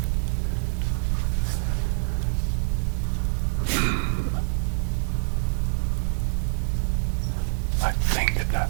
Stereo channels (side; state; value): left; silent; digital silence